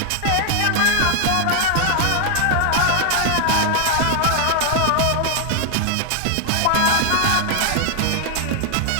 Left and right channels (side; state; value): both; different; correlation 0.00